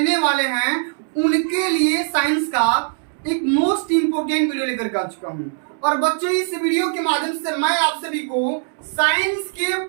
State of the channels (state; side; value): silent; left; digital silence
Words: वाले हैं, उनके लिए साइंस का एक मोस्ट इम्पोर्टेंट वीडियो लेकर के आ चुका हूँ। और बच्चों, इस वीडियो के माध्यम से मैं आप सभी को साइंस के